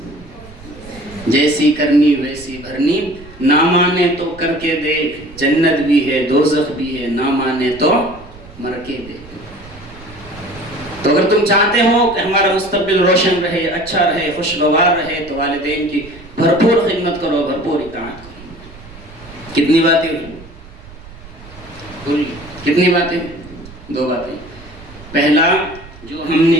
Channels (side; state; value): right; noise; rumble, 19 dB below the sound